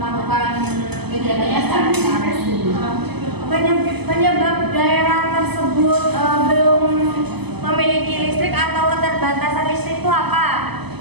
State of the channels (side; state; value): left; late; 0.99 ms